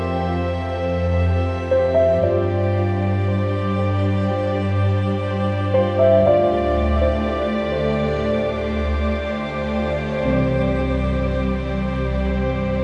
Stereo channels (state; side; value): identical; both; correlation 1.00